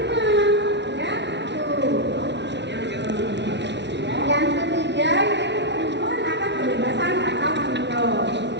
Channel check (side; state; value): left; late; 0.51 ms